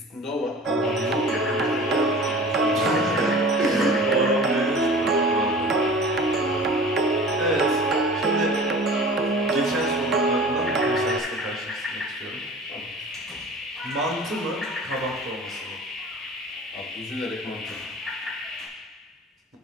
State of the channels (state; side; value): normal; both; correlation 0.41